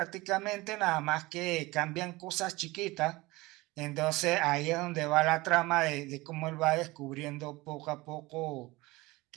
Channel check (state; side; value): quieter; left; 21.2 dB